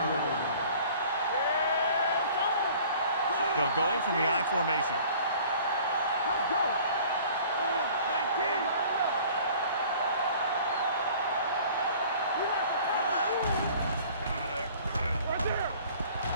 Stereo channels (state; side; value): inverted; both; correlation -0.49